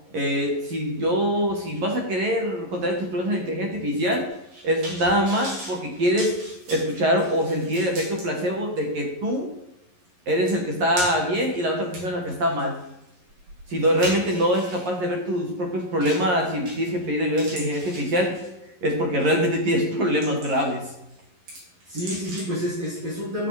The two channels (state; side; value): late; left; 11 ms